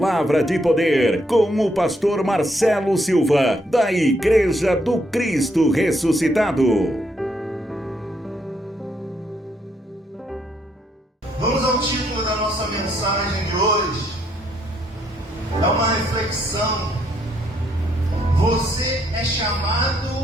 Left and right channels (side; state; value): both; normal; correlation 0.73